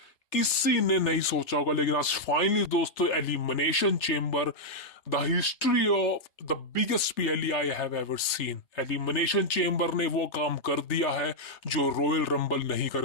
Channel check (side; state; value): right; late; 3.3 ms